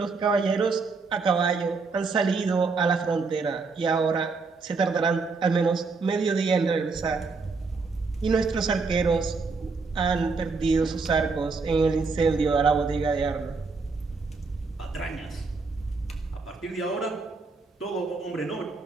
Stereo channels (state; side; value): quieter; left; 4.4 dB